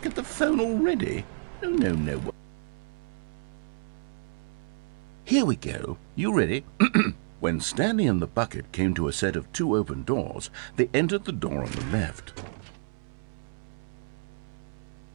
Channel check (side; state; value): left; silent; 58 dB below the other